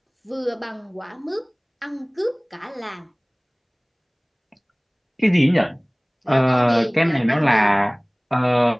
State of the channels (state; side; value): identical; both; correlation 1.00